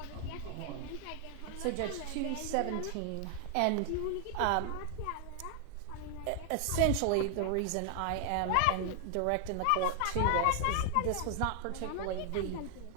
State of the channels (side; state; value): both; different; correlation 0.00